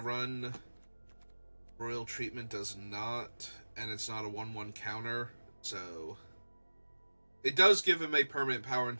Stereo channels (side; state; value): both; inverted; correlation -1.00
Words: run. Royal Treatment does not, and it's not a 1-1 counter, so it does give him a permanent power and